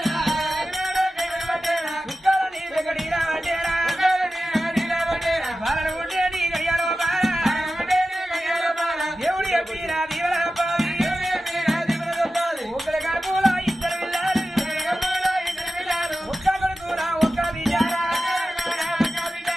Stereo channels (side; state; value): both; normal; correlation 0.94